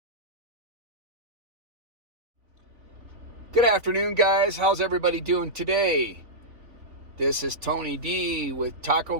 Good afternoon, guys. How's everybody doing today? This is Tony D with Taco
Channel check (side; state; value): left; late; 3.6 ms